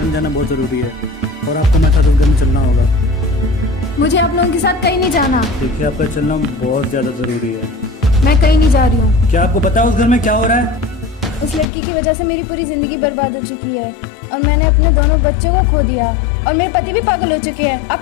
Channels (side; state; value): right; drops out; at 11.7 s